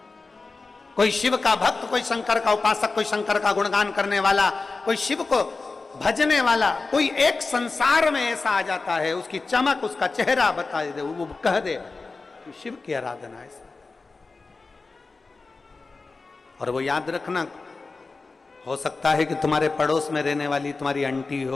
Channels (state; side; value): quieter; right; 3.9 dB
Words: कोई शिव का भक्त, कोई शंकर का उपासक, कोई शंकर का गुणगान करने वाला, कोई शिव को भजने वाला, कोई एक संसार में ऐसा आ जाता है, उसकी चमक, उसका चेहरा बता दे, वो कह दे कि शिव की आराधना ऐसा। और वो याद रखना, हो सकता है कि तुम्हारे पड़ोस में रहने वाली तुम्हारी आंटी